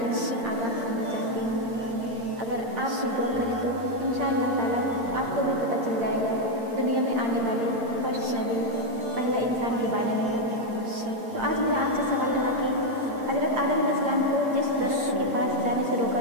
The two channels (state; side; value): late; left; 8.7 ms